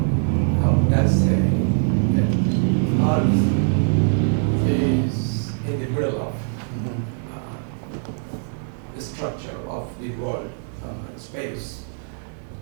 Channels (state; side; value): silent; left; digital silence